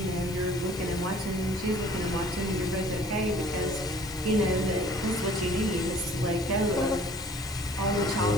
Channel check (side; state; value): left; noise; hiss, 18 dB below the sound